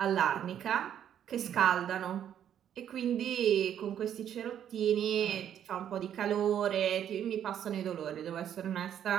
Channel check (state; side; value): quieter; left; 9.8 dB